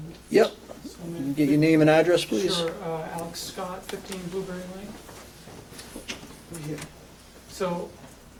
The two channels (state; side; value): identical; both; correlation 1.00